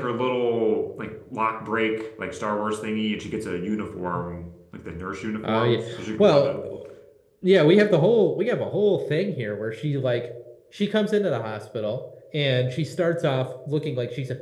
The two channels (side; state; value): both; identical; correlation 1.00